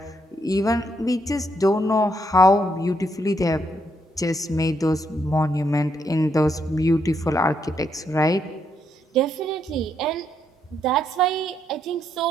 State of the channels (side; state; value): both; normal; correlation 0.76